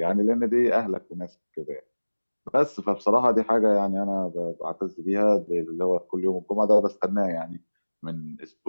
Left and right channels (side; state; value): both; inverted; correlation -1.00